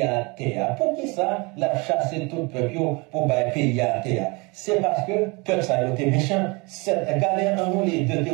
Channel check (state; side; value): quieter; left; 27.9 dB